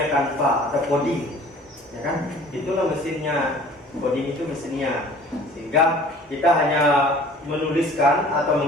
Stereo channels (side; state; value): both; normal; correlation 0.48